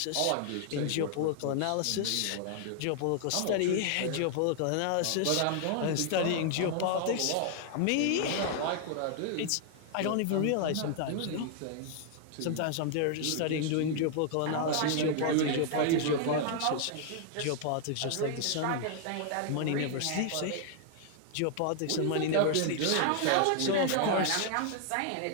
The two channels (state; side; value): different; both; correlation 0.00